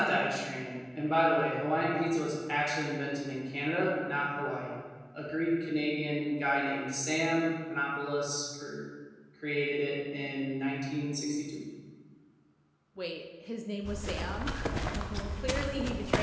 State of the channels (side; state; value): both; identical; correlation 1.00